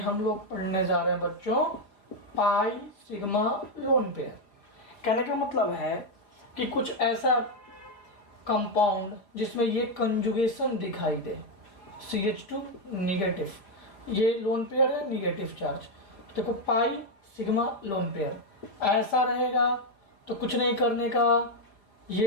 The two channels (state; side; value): late; right; 4.9 ms